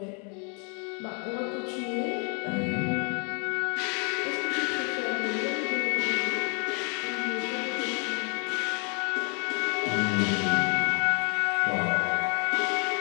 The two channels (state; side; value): quieter; right; 37.5 dB